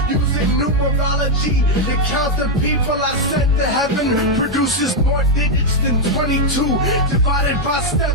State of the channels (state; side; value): normal; both; correlation 0.01